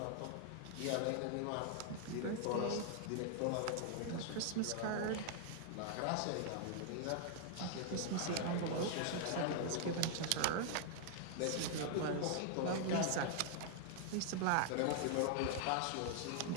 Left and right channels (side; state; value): both; different; correlation 0.00